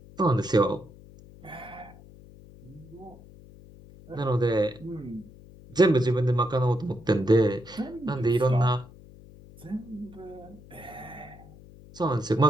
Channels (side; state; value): left; noise; hum, 21 dB below the sound